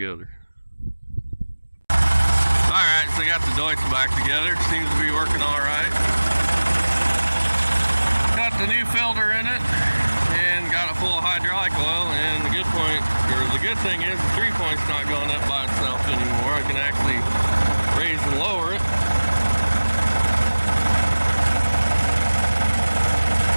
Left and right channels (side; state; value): both; inverted; correlation -1.00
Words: Alright, so I got the DEUTZ back together. Seems to be working alright. Got the new filter in it and got it full of hydraulic oil, and the good thing is the 3-point's not going up by itself anymore. I can actually raise and lower it.